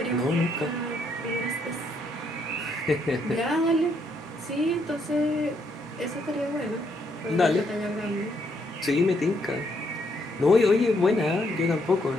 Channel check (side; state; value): both; normal; correlation 0.73